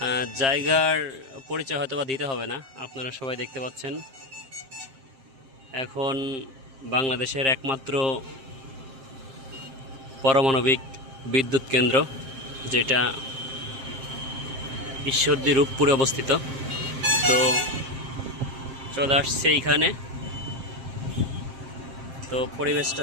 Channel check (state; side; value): late; left; 7.5 ms